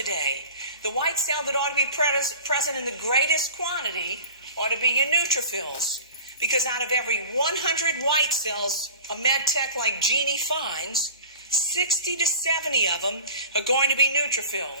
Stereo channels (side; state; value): both; inverted; correlation -0.39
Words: the white cell that ought to be present in the greatest quantity ought to be your neutrophils. Because out of every 100 white cells a med tech like Jeannie finds, 60 to 70 of them are going to be